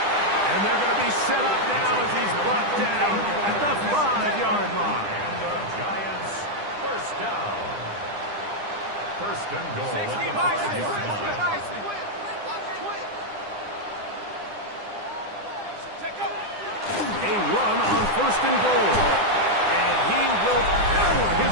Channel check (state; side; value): late; left; 9.9 ms